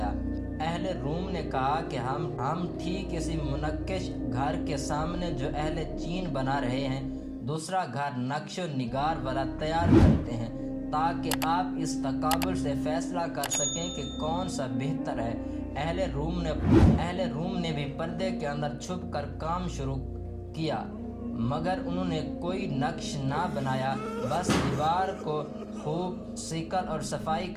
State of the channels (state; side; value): identical; both; correlation 1.00